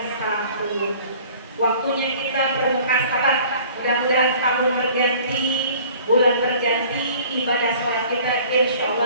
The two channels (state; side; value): inverted; both; correlation -0.49